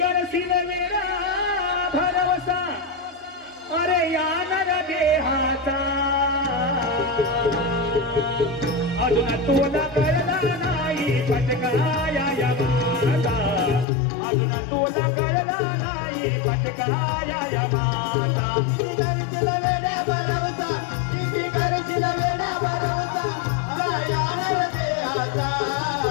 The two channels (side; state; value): right; drops out; at 13.9 s